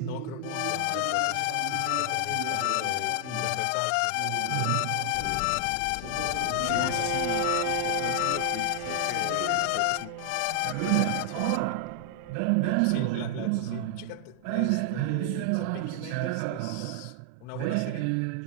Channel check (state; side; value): different; both; correlation 0.00